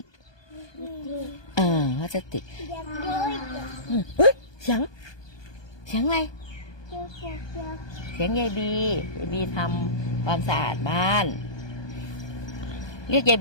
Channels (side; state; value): right; late; 1.2 ms